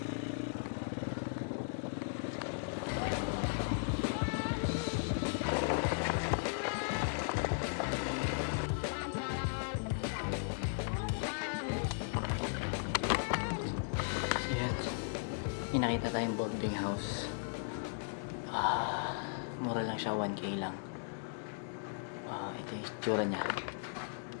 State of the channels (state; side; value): silent; right; digital silence